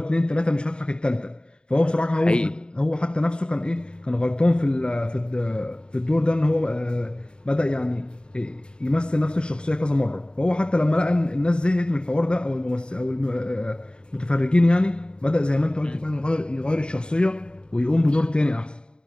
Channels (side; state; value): right; late; 0.050 ms